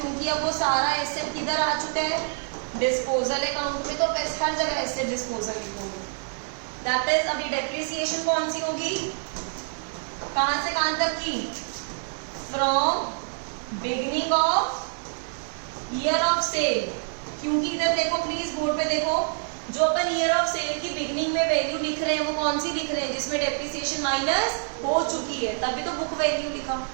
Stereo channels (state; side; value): silent; left; 61 dB below the other